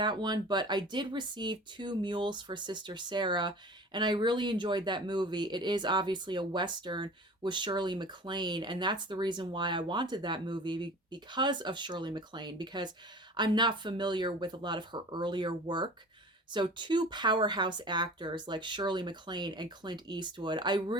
one. But I did receive Two Mules for Sister Sara, and I really enjoyed that movie. It is obviously a Western with Shirley MacLaine, and that's the reason why I wanted that movie, because of Shirley MacLaine, because I'm not familiar with a lot of her earlier work. So two powerhouse actors like Shirley MacLaine and Clint Eastwood, I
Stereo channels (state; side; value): normal; both; correlation 0.40